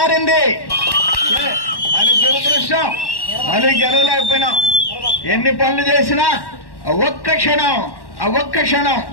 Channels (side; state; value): right; late; 1.1 ms